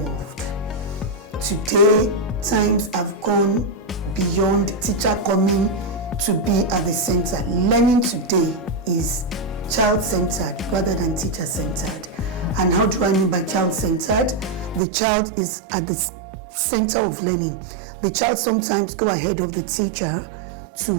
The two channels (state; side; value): drops out; left; at 14.8 s